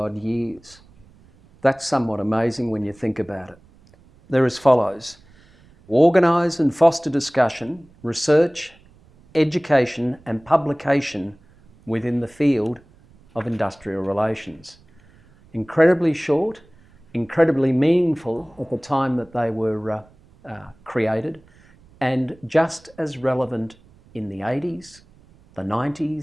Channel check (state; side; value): noise; right; rumble, 28 dB below the sound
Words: years. That's somewhat amazing when you think about it. They're as follows: organise and foster discussion, research, education and publication within the field of industrial relations. Incredibly short, incredibly meaningful at the time that they were created, and just as relevant in the 80s, the